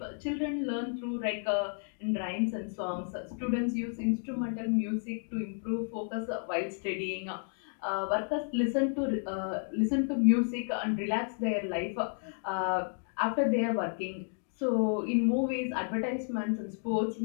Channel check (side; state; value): right; silent; 56 dB below the other